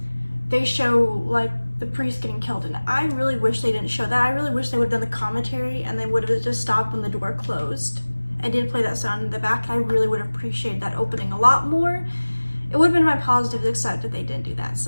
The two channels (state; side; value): inverted; both; correlation -1.00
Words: they show like the priest getting killed, and I really wish they didn't show that. I really wish they would have done the commentary and they would have just stopped when the door closed and didn't play that sound in the back. I really would have appreciated that opening a lot more. It would have been my positives, except that they didn't do that,